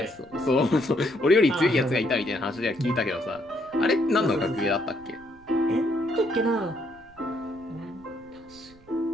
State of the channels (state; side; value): noise; right; rumble, 27 dB below the sound